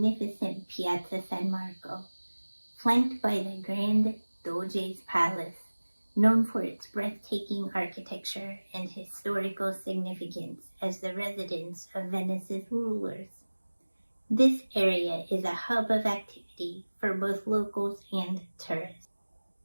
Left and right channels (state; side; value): inverted; both; correlation -1.00